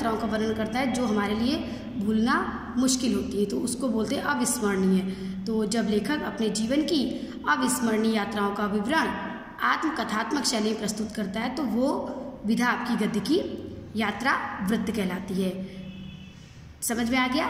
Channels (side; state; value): both; identical; correlation 1.00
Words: का वर्णन करता है जो हमारे लिए भूलना मुश्किल होती है, तो उसको बोलते हैं अविस्मरणीय। तो जब लेखक अपने जीवन की अविस्मरणीय यात्राओं का विवरण आत्मकथात्मक शैली में प्रस्तुत करता है तो वो विधा आपकी गद्य की यात्रा वृत्त कहलाती है। समझ में आ